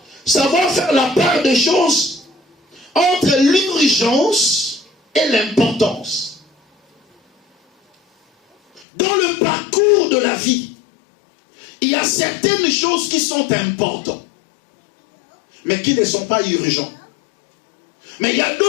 Savoir faire la part des choses entre l'urgence et l'importance. Dans le parcours de la vie, il y a certaines choses qui sont importantes, mais qui ne sont pas urgentes. Mais il y a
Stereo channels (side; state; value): right; drops out; at 8.8 s